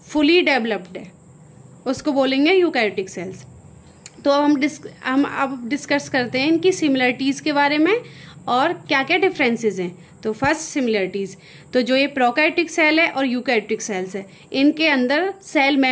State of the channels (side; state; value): both; identical; correlation 1.00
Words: फुली डेवलप्ड है, उसको बोलेंगे यूकैरियोटिक सेल्स. तो हम अब डिस्कस करते हैं इनकी सिमिलरिटीज़ के बारे में और क्या क्या डिफरेंसेस हैं. तो फर्स्ट सिमिलरिटीज़, तो जो ये प्रोकैरियोटिक सेल है और यूकैरियोटिक सेल्स है, इनके अंदर सेल